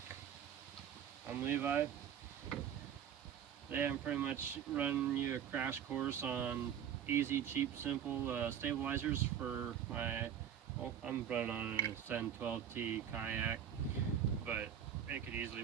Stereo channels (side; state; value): left; quieter; 9.2 dB